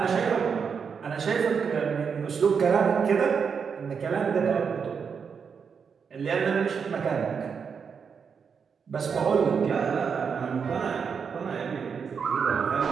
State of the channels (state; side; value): quieter; left; 6.3 dB